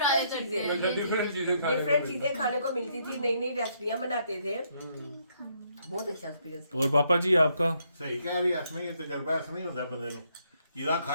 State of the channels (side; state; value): both; inverted; correlation -0.72